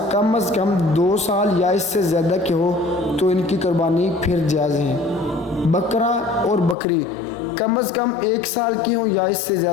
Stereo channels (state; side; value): drops out; right; at 6.8 s